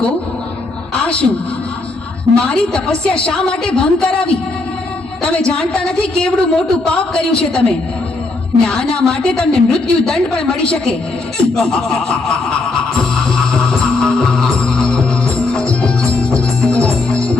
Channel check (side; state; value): right; quieter; 3.3 dB